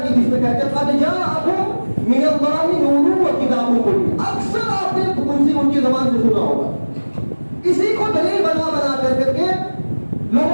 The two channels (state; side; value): inverted; both; correlation -1.00